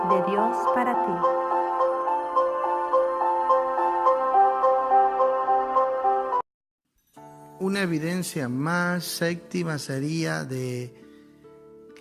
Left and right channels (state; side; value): identical; both; correlation 1.00